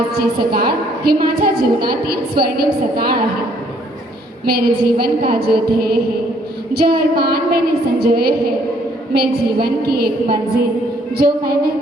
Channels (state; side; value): normal; both; correlation 0.65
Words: सकाळ ही माझ्या जीवनातील स्वर्णिम सकाळ आहे। मेरे जीवन का जो ध्येय है, जो अरमान मैंने संजोए हैं, मैं जीवन की एक मंजिल जो मैंने